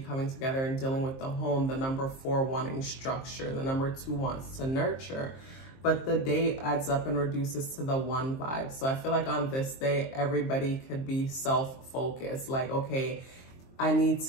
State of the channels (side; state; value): right; late; 23 ms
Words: together and dealing with the home, the number 4 wanting structure, the number 2 wants to nurture. but the day adds up and reduces to the one vibe. So I feel like on this day, everybody could be self-focused. Like, okay, I need